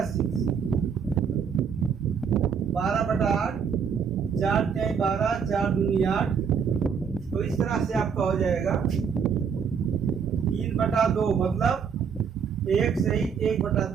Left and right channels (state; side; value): quieter; left; 6.7 dB